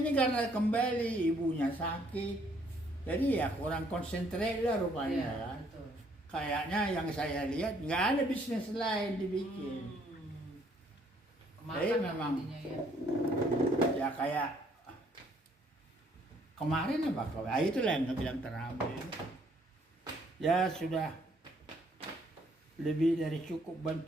ini karena kembali ibunya sakit, jadi ya kurang konsentrasi lah rupanya Iya, kan. betul. Kayaknya yang saya lihat nggak ada bisnis lain dibikin. Kemakan Jadi memang intinya ya. ya kayak kemarin apa? Itulah yang bilang terakhir. Ya sudah lebih dari cukup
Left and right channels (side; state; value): both; normal; correlation 0.66